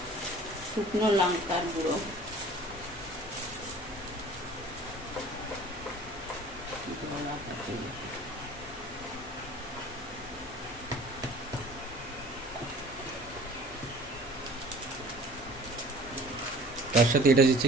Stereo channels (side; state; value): both; normal; correlation 0.47